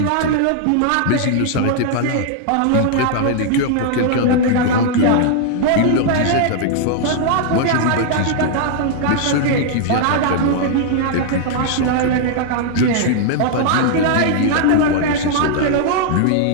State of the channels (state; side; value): different; both; correlation 0.00